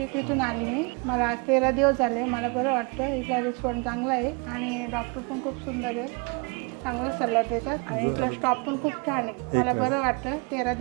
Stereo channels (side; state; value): left; quieter; 31.0 dB